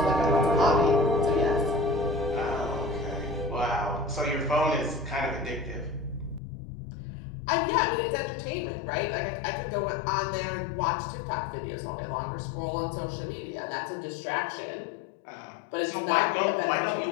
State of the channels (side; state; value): right; drops out; at 6.4 s